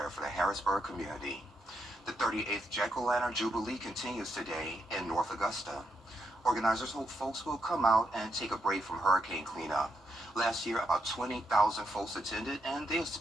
for the Harrisburg community. The 38th Jack-O-Lantern Jubilee continues today in North Augusta. Organizers hope folks will come out and take a break from hurricane cleanup. Last year, about 20,000 folks attended, and they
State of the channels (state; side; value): normal; both; correlation 0.79